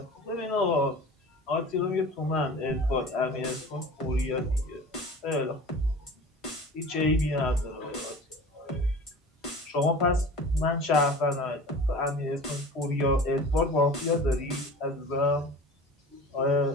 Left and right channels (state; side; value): normal; both; correlation 0.39